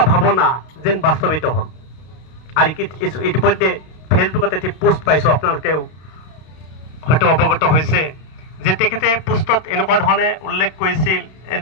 ভাৱনা যেন বাস্তৱিত হ'ল। আৰু ইতিমধ্যে ফেচবুকত এটি পোষ্ট পাইছোঁ, আপোনালোকেও হয়তো অৱগত হৈছে যে তেখেতে পোষ্টত এনেকুৱা ধৰণে উল্লেখ কৰিছিল,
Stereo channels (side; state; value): right; late; 32 ms